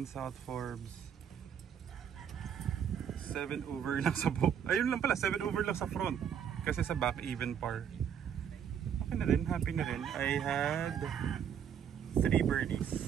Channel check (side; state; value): left; quieter; 8.4 dB